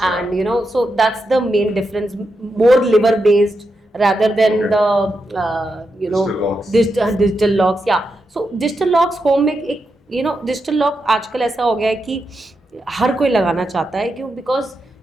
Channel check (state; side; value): normal; both; correlation 0.86